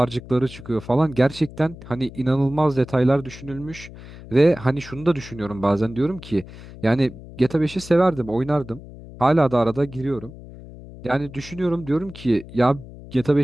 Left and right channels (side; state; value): left; noise; hum, 16 dB below the sound